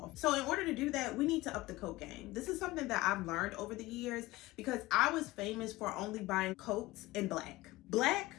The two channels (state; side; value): quieter; right; 19.1 dB